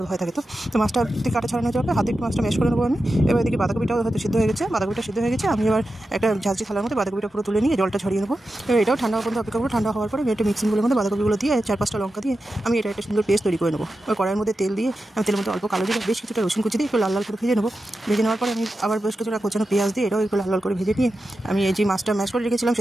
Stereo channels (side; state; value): both; normal; correlation 0.91